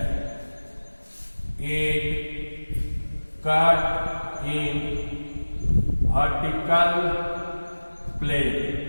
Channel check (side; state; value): both; inverted; correlation -1.00